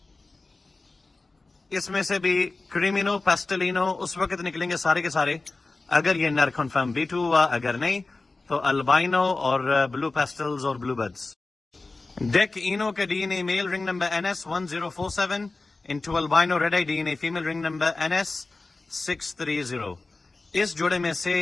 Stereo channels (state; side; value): quieter; right; 3.5 dB